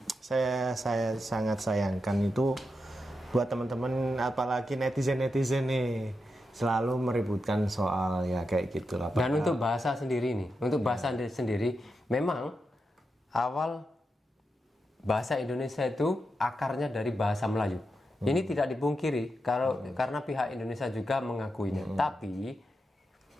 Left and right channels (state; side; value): normal; both; correlation 0.87